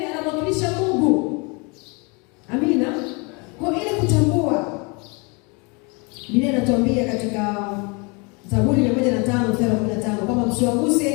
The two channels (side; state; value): right; quieter; 30.6 dB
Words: anamwakilisha Mungu. Amina. Kwa ile kutambua, Biblia inatuambia katika Zaburi 105:15 kama